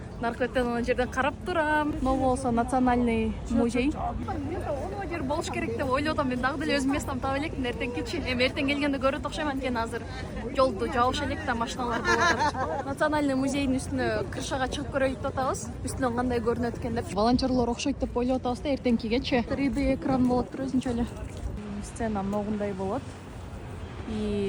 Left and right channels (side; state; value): both; identical; correlation 1.00